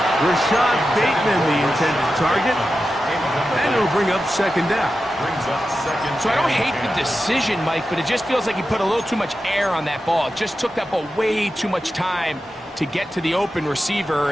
Rashad Bateman, the intended target. And it'll bring up second down. Brings up second. So I don't hate the decision, Mike, but it just feels like he put a little too much air on that ball. It just took that ball way too much time to get to the open receiver.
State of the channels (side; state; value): both; normal; correlation 0.91